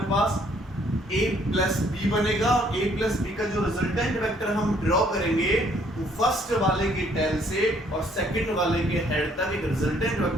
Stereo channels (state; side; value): normal; both; correlation 0.64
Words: पास a प्लस b बनेगा। और a प्लस b का जो रिजल्टेंट वेक्टर हम ड्रॉ करेंगे वो फर्स्ट वाले के टेल से और सेकंड वाले के हेड तक एक रिजल्टेंट